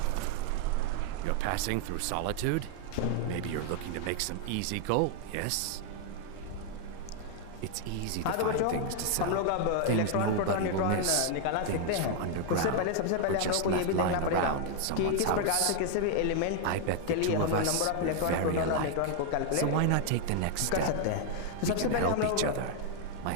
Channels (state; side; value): different; both; correlation 0.00